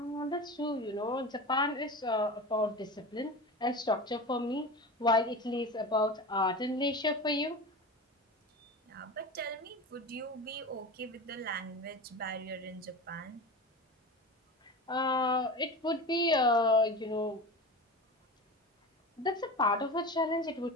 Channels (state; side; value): normal; both; correlation 0.29